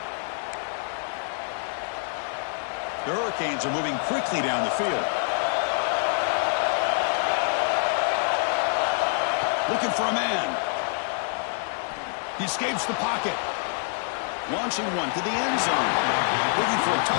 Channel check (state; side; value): silent; right; digital silence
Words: The Hurricanes are moving quickly down the field. Looking for a man. He escapes the pocket. Launching one to the end zone. Looking for a